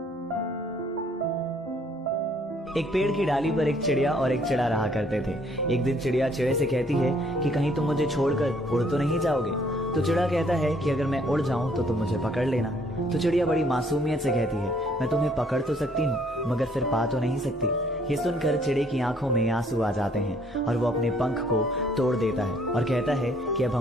एक पेड़ की डाली पर एक चिड़िया और एक चिड़ा रहा करते थे। एक दिन चिड़िया चिड़े से कहती है कि कहीं तुम मुझे छोड़कर उड़ तो नहीं जाओगे। तो चिड़ा कहता है कि अगर मैं उड़ जाऊं तो तुम मुझे पकड़ लेना। तो चिड़िया बड़ी मासूमियत से कहती है, मैं तुम्हें पकड़ तो सकती हूँ मगर फिर पा तो नहीं सकती। ये सुनकर चिड़े की आंखों में आंसू आ जाते हैं और वो अपने पंख को तोड़ देता है और कहता है कि अब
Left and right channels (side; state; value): both; normal; correlation 0.64